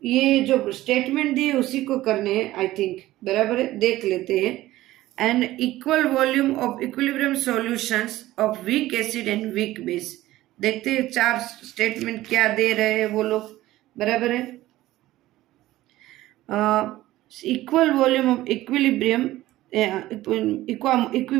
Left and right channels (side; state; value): left; quieter; 16.1 dB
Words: ये जो स्टेटमेंट दिए उसी को करने हैं आई थिंक, बराबर है, देख लेते हैं। An equal volume of equilibrium solutions of weak acid and weak base, देखते हैं चार स्टेटमेंट क्या दे रहे हैं वो लोग, बराबर है। Equal volume of equilibrium